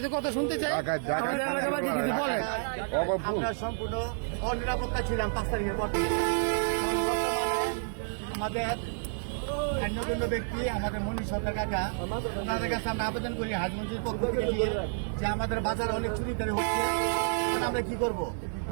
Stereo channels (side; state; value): left; silent; 58 dB below the other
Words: কথা শুনতে চাই। আমাদের এলাকাবাসী কিছু বলেন। আমরা সম্পূর্ণ অনিরাপত্তা ছিলাম 5 তারিখের পর থেকে। আমাদের অন্যতম ব্যক্তি আমাদের মনীষ সরকার কাকা, ওনাদের কাছে আমরা আবেদন করি হাজগঞ্জের পক্ষ থেকে যে আমাদের বাজারে অনেক চুরিদারি হচ্ছে, আমরা কি করব।